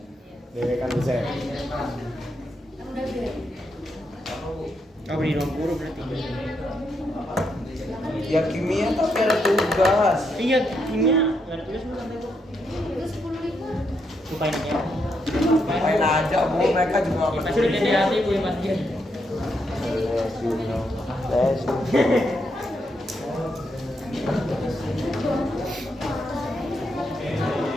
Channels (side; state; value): both; normal; correlation 0.79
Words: Dewe kan bisa. Kan udah beda. Oh beri 20 berarti. ya kimia tapi ada tugas. Iya, kimia nggak ada tugas belum sampai gua. Itu 10.000. Lupain ya. Main aja Bu, mereka juga nggak Pasti udah peduli. di hati Bu yang pasti. Yes, you know. Yes, you know.